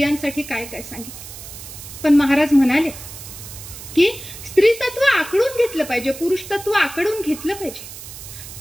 काय काय सांगितलं. पण महाराज म्हणाले की स्त्री तत्व आकडून घेतलं पाहिजे, पुरुष तत्व आकडून घेतलं पाहिजे.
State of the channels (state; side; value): noise; right; hiss, 13 dB below the sound